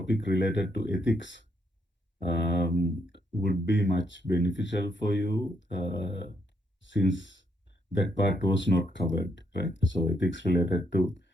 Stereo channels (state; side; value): normal; both; correlation 0.76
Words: related to ethics, would be much beneficial for you since that part was not covered, right? So uh,